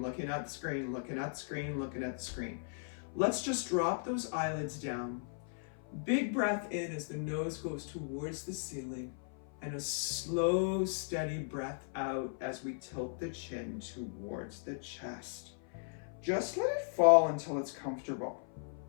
looking at the screen, looking at the screen, looking at the screen, let's just drop those eyelids down. Big breath in as the nose goes towards the ceiling, and a slow, steady breath out as we tilt the chin towards the chest. Just let it fall until it's comfortable.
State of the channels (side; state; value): right; silent; 53 dB below the other